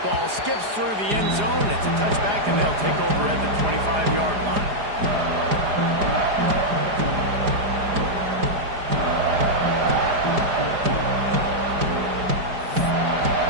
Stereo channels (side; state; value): left; late; 4.9 ms